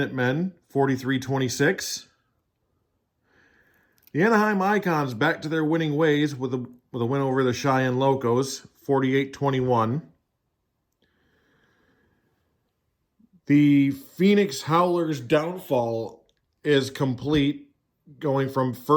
43-26. The Anaheim Icons back to their winning ways with a win over the Cheyenne Locos, 48-21. The Phoenix Howlers' downfall is complete, going from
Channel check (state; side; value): identical; both; correlation 1.00